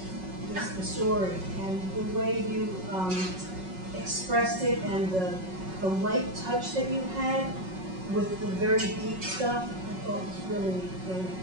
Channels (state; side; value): late; left; 5.4 ms